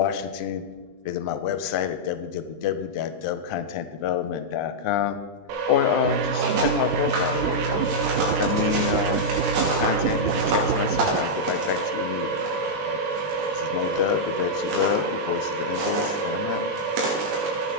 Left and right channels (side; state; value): left; late; 20 ms